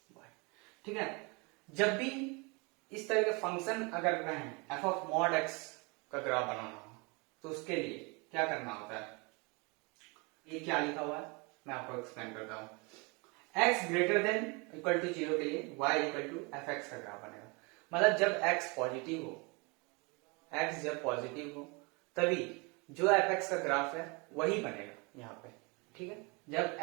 y, ठीक है। जब भी इस तरह के फंक्शन अगर कहें f ऑफ मॉड x का ग्राफ बनाना हो तो उसके लिए क्या करना होता है, ये क्या लिखा हुआ है मैं आपको एक्सप्लेन करता हूं। x greater than equal to 0 के लिए y इक्वल टू fx का ग्राफ बनेगा। मतलब जब x पॉजिटिव हो, x जब पॉजिटिव हो तभी जो fx का ग्राफ है वही बनेगा यहाँ पे, ठीक है। जब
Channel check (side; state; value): left; quieter; 29.5 dB